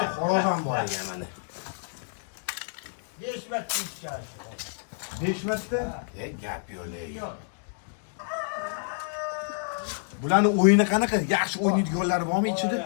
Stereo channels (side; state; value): right; silent; digital silence